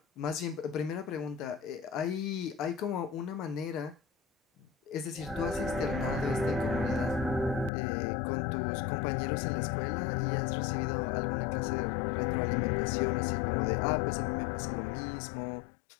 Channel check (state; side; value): drops out; right; at 7.7 s